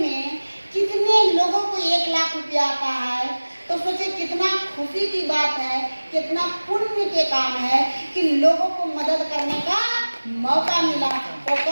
में कितने लोगों को 1 लाख रुपया आता है, तो सोचिए कितना खुशी की बात है, कितना पुण्य के काम है कि लोगों को मदद करने का मौका मिला। तो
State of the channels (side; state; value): both; inverted; correlation -1.00